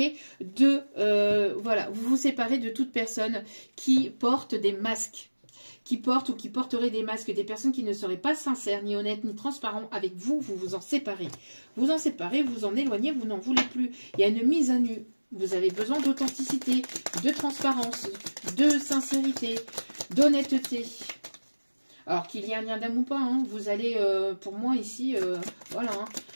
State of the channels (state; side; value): inverted; both; correlation -1.00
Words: de voilà, vous vous séparez de toute personne qui porte des masques. Qui portent ou qui porteraient des masques, des personnes qui ne seraient pas sincères, ni honnêtes, ni transparents avec vous, vous vous en séparez. Vous en séparez, vous en éloignez, vous n'en voulez plus. Il y a une mise à nu. Vous avez besoin d'authenticité, de transparence, de sincérité, d'honnêteté. Alors qu'il y ait un lien d'âme ou pas, hein, vous allez, pour moi ici, voilà, hein,